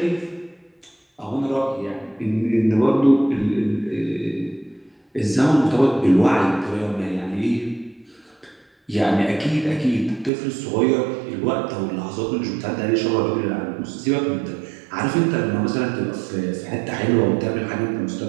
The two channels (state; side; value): drops out; left; at 10.3 s